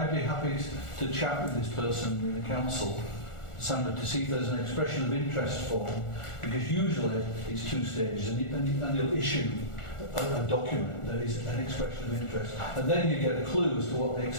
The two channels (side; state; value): right; late; 1.4 ms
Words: be happy to chat with this person in the council, Sandra, to see if there's an expression of interest form, because usually it's 2 stages, and they'll issue a document that is an expression of interest, and then you get a clue as to what they